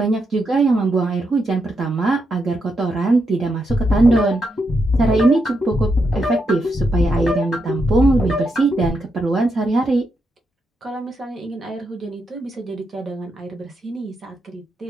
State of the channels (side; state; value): both; normal; correlation 0.82